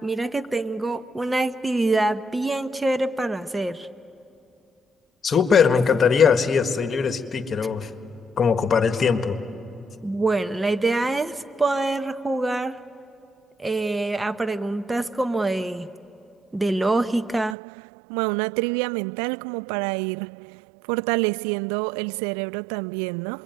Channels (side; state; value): left; drops out; at 17.6 s